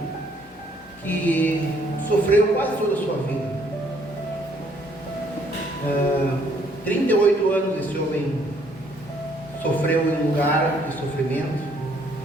que sofreu quase toda a sua vida. 38 anos esse homem sofreu em um lugar de sofrimento,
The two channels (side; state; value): both; normal; correlation 0.65